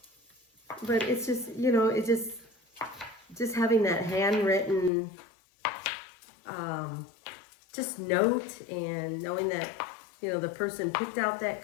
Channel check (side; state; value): right; drops out; at 4.9 s